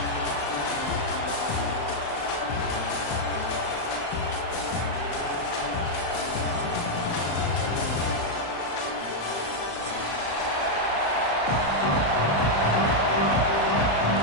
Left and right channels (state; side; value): late; right; 35 ms